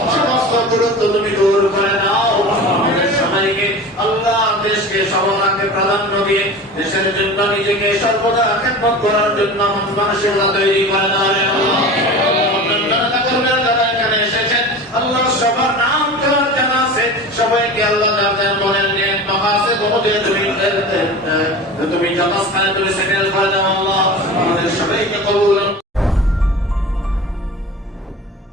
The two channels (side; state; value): both; normal; correlation 0.34